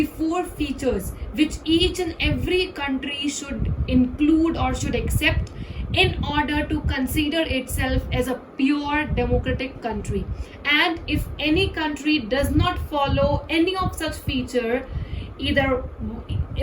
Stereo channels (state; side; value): identical; both; correlation 1.00